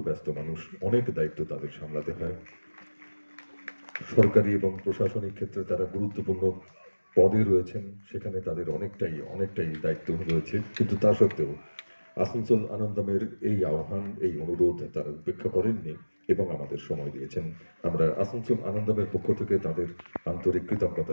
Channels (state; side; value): inverted; both; correlation -1.00